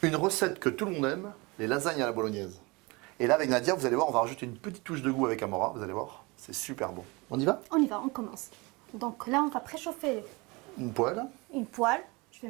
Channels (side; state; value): left; quieter; 25.6 dB